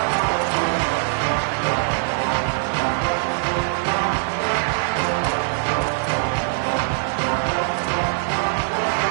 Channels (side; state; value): left; silent; 64 dB below the other